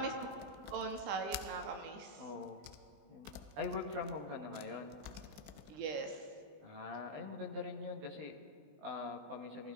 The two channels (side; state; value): left; late; 20 ms